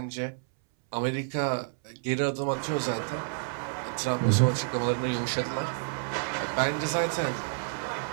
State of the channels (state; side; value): silent; left; 58 dB below the other